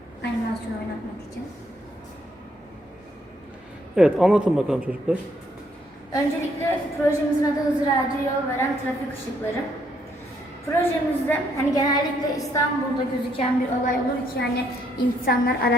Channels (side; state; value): both; normal; correlation 0.71